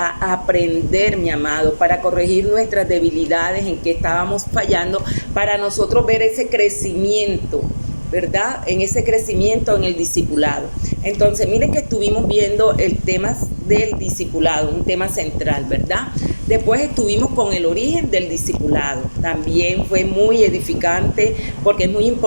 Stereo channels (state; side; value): inverted; both; correlation -1.00